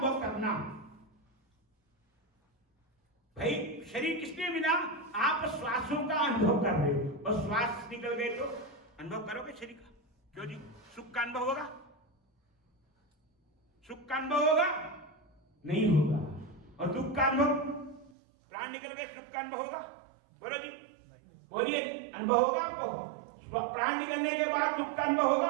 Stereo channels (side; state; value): left; drops out; at 18.1 s